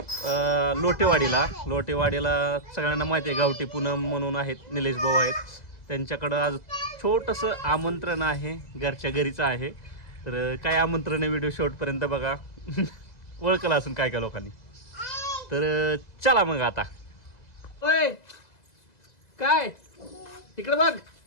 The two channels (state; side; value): late; right; 2.0 ms